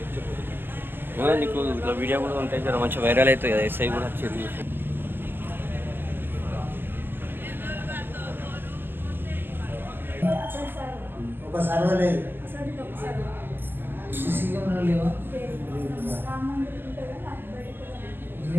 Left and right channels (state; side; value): late; left; 0.096 ms